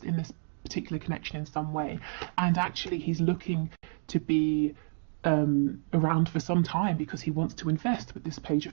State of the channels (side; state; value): left; silent; digital silence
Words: in this particular connection in some way, and actually he's looking to be around for some time because he wants to invest with this Page